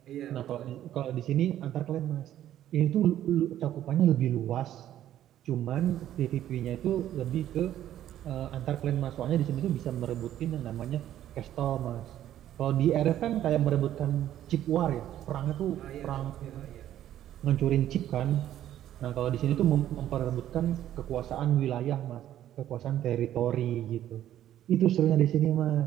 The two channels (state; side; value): quieter; left; 11.9 dB